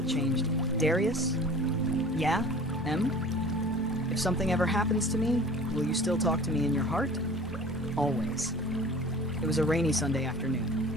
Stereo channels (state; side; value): normal; both; correlation 0.44